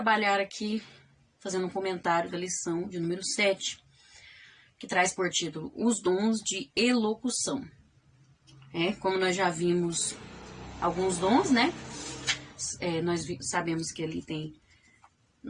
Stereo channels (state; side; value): identical; both; correlation 1.00